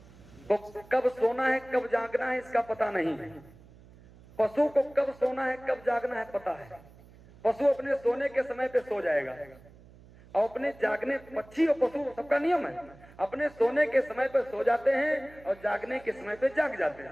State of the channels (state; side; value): noise; right; hum, 23 dB below the sound